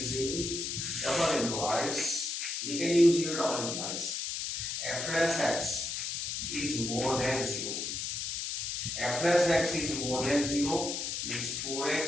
double implies, we can use here double implies, f dash x is more than 0. F dash x is more than 0 means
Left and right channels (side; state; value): left; noise; hiss, 3 dB below the sound